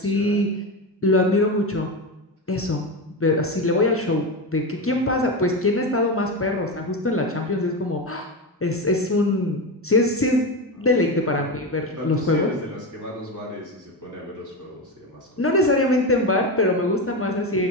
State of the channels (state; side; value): normal; both; correlation 0.17